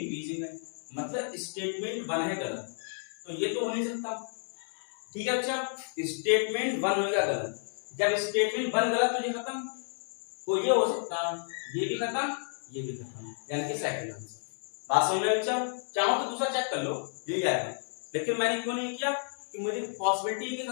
है, मतलब स्टेटमेंट 1 है गलत, तो ये तो हो नहीं सकता। ठीक है अच्छा, स्टेटमेंट 1 होगा गलत, जब स्टेटमेंट 1 गलत तो ये खत्म, तो ये हो सकता है ये भी खत्म ये भी खत्म, यानी कि सेकंड आंसर। बात समझ में अच्छा, चाहो तो दूसरा चेक कर लो यही आएगा, लेकिन मैंने क्यों नहीं किया कि मुझे पॉसिबिलिटी की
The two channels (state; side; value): silent; right; digital silence